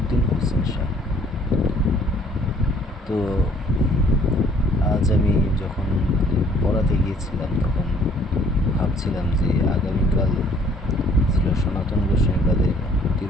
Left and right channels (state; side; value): normal; both; correlation 0.60